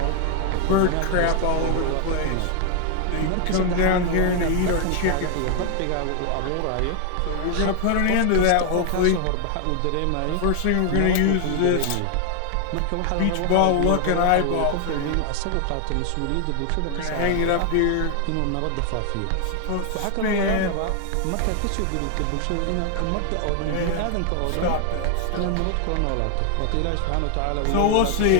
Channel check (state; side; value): different; both; correlation 0.00